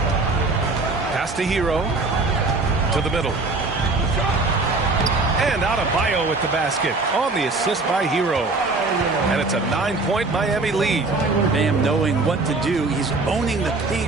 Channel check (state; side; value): quieter; left; 3.5 dB